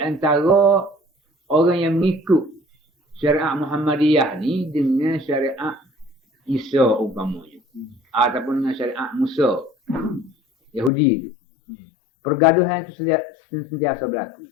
antara orang yang mengikut syariat Muhammadiyah ni dengan syariat Isa umpamanya. Ataupun dengan syariat Musa Yahudi itu. Pergaduhan itu sentiasa berlaku.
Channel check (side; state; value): right; drops out; at 10.9 s